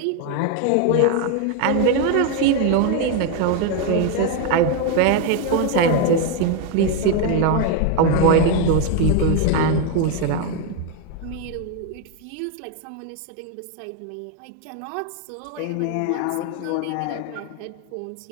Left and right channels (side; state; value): both; different; correlation 0.01